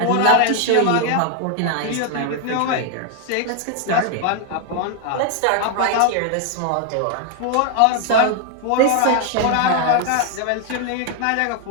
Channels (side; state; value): both; different; correlation 0.00